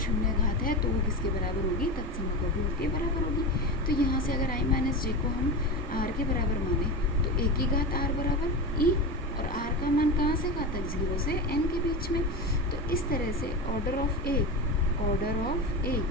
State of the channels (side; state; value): both; normal; correlation 0.22